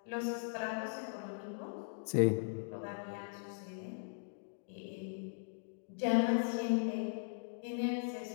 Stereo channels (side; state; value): right; silent; digital silence